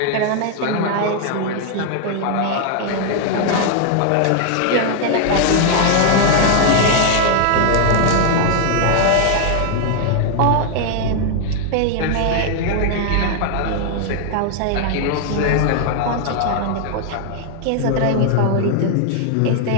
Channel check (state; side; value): different; both; correlation 0.00